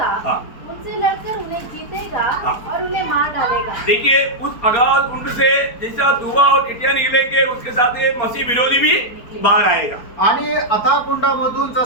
हाँ. उनसे लड़कर उन्हें जीतेगा हाँ. और उन्हें मार डालेगा. देखिए उस अगाध कुंड से जैसा धुआं और टिटिया निकलेंगे उसके साथ ये मसीह विरोधी भी बाहर आएगा. आणि अथाह कुंडामधून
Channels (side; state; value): right; late; 4.4 ms